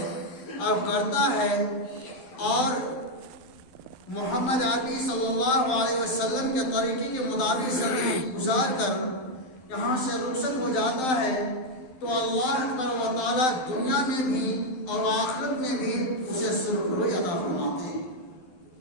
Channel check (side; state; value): right; late; 12 ms